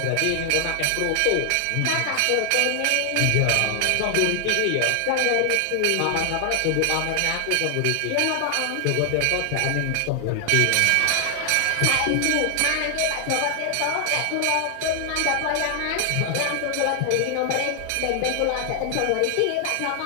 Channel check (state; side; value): different; both; correlation 0.00